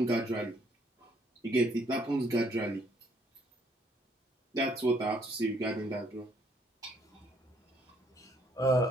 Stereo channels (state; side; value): normal; both; correlation 0.67